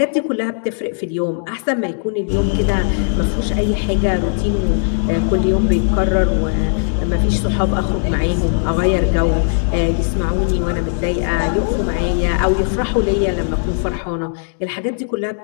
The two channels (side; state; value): right; silent; digital silence